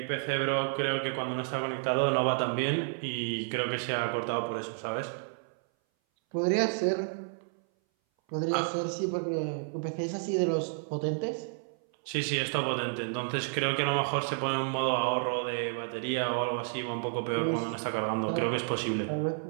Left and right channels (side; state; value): left; silent; 57 dB below the other